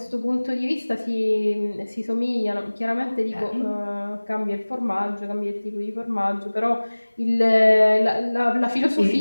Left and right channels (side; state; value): both; inverted; correlation -1.00